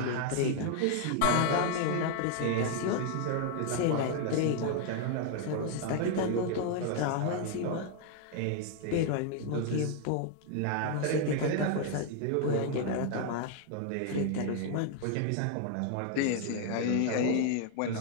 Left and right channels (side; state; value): both; different; correlation 0.00